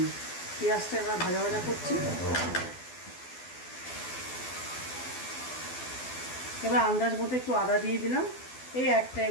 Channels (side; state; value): right; late; 12 ms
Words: পেঁয়াজটা এবার ভাজা ভাজা করছি। এবার আন্দাজ মতো একটু আদা দিয়ে দিলাম, এই 1